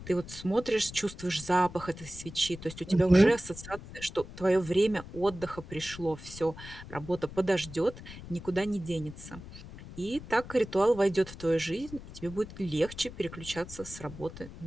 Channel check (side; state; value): left; noise; rumble, 14 dB below the sound